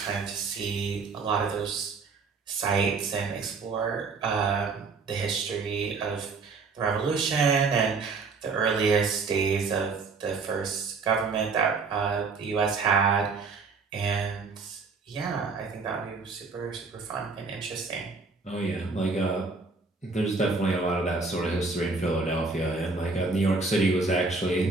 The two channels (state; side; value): quieter; left; 4.3 dB